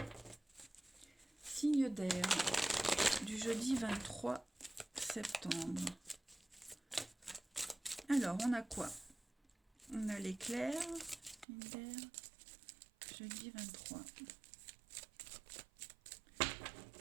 Signe d'air du jeudi 23 septembre. Alors, on a quoi? On a l'éclair, jeudi 23.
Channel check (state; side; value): drops out; left; at 11.5 s